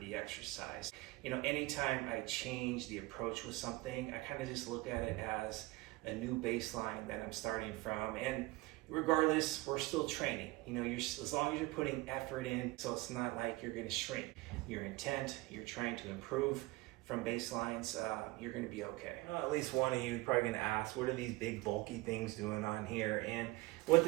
exercise. You know, anytime I change the approach with something, I kind of just look at it as a new baseline that I'm starting from. And regardless, we're still training. You know, as long as you're putting effort in, so it's not like you're gonna shrink. Your intent, you're trying to improve from baselines, you're gonna be okay. Well, at least one of you probably gonna ask, what are these big bulky things doing on here? And what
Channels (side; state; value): left; quieter; 20.9 dB